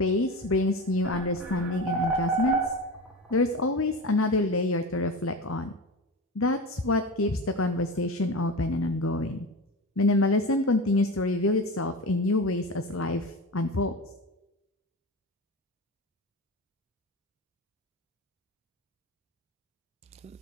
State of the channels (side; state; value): both; normal; correlation 0.27